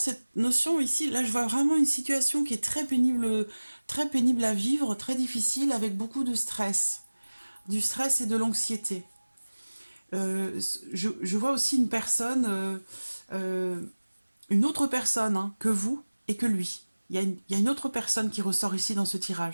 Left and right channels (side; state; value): both; inverted; correlation -1.00